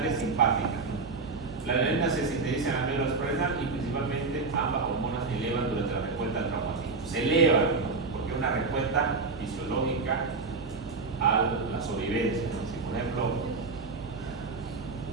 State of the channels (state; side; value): quieter; left; 4.1 dB